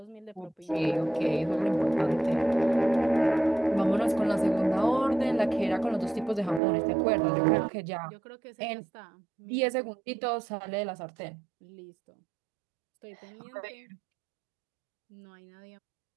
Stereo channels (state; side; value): drops out; left; at 6.6 s